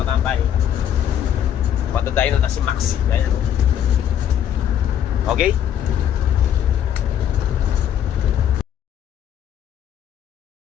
katambay. Matadayin na si Maxi. Ayan. Okay?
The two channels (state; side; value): quieter; right; 9.9 dB